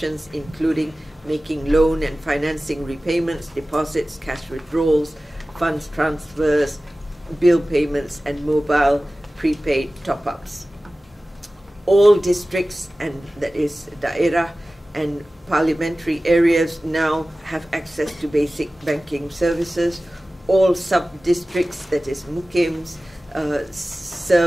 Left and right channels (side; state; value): both; normal; correlation 0.96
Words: including making loan and financing repayments, deposits, cash withdrawals, funds transfers, bill payments, and mobile prepaid top-ups. All districts, and that is daerah and parliamentary areas, now have access to basic banking services. All sub-districts, that is mukims,